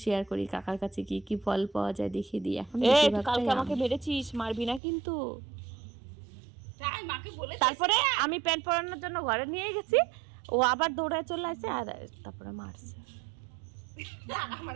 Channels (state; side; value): drops out; left; at 4.8 s